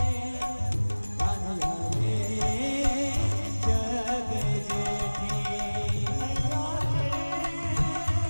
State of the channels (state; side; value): inverted; both; correlation -1.00